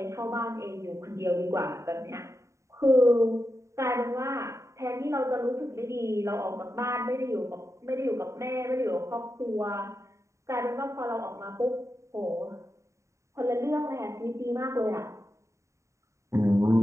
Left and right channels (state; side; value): late; left; 0.14 ms